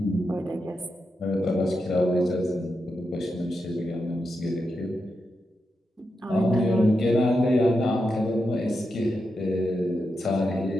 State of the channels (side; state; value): both; normal; correlation 0.87